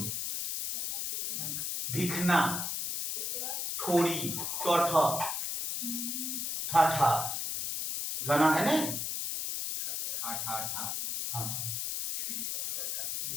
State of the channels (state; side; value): noise; left; hiss, 2 dB below the sound